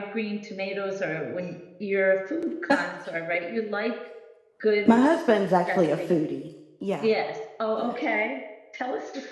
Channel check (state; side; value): identical; both; correlation 1.00